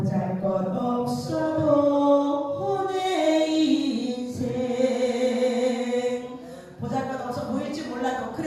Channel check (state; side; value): identical; both; correlation 1.00